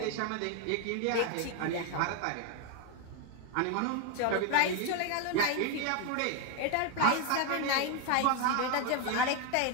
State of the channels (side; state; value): both; different; correlation 0.01